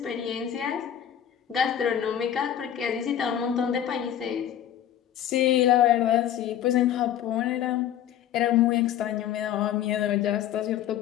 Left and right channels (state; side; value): quieter; right; 10.6 dB